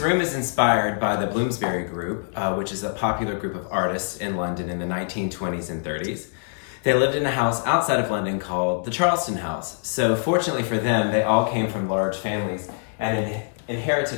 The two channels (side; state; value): right; silent; digital silence